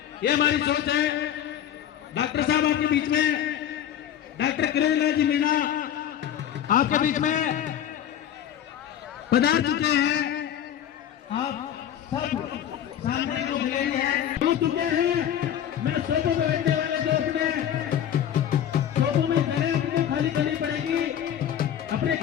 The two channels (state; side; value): quieter; right; 10.2 dB